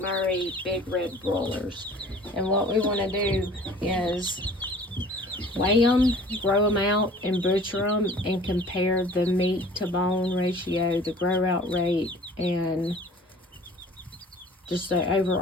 big red broilers. And what we want to do is weigh them, grow them out, and butcher them, and compare the meat to bone ratio, the grow out rate, and just the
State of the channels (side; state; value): both; normal; correlation 0.48